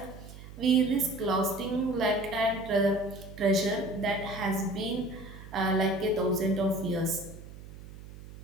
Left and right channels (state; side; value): noise; right; hum, 15 dB below the sound